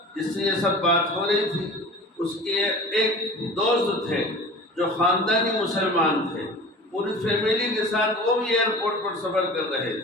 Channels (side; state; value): both; normal; correlation 0.38